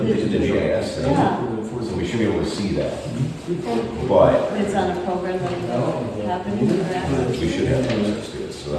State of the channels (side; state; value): both; identical; correlation 1.00